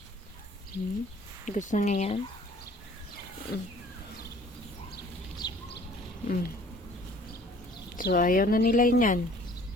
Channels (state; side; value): normal; both; correlation 0.53